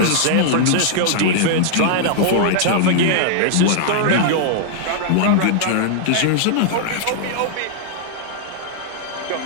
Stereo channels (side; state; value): both; different; correlation -0.01